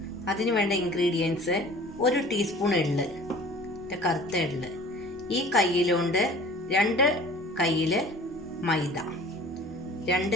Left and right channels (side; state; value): both; normal; correlation 0.46